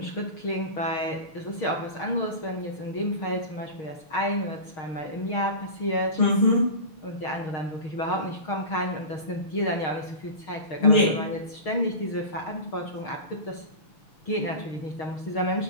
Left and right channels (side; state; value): right; late; 6.4 ms